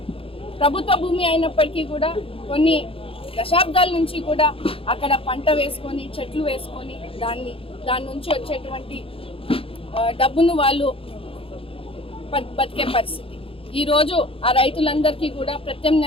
ప్రభుత్వ భూమి అయినప్పటికీ కూడా కొన్ని దశాబ్దాల నుంచి కూడా అక్కడ పంట వేసుకొని చెట్లు వేసుకొని దాని నుంచి వచ్చేటువంటి డబ్బును వాళ్ళు బతికే పరిస్థితి. ఈరోజు ఆ రైతులందరికీ కూడా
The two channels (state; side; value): late; right; 0.27 ms